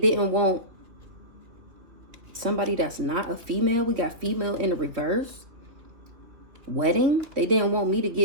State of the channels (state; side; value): late; left; 3.0 ms